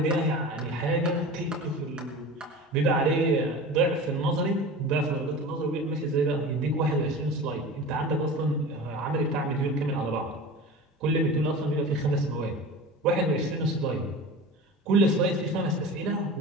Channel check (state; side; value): normal; both; correlation 0.34